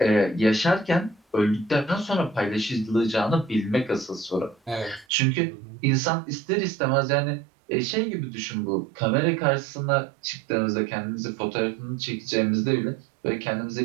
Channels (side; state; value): left; drops out; at 5.1 s